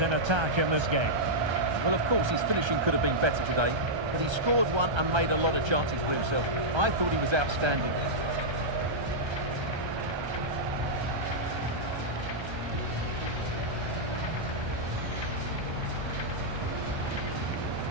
in attack in this game. Well, of course, his finishing could have been better today, but he scored one and made a lot of chances for himself. I thought he was outstanding.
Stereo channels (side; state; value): left; late; 1.3 ms